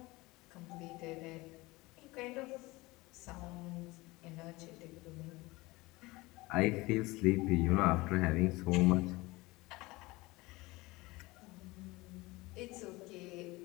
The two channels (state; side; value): quieter; right; 21.8 dB